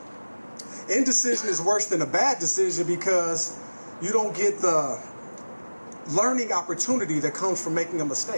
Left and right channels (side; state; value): both; inverted; correlation -1.00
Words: Indecision is worse than a bad decision because you don't get the learning opportunity that comes from making a